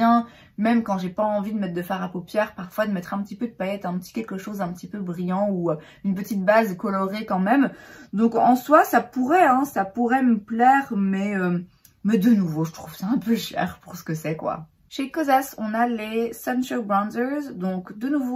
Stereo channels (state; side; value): identical; both; correlation 1.00